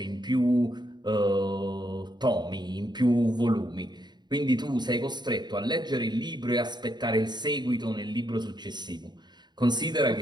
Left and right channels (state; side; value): late; left; 0.21 ms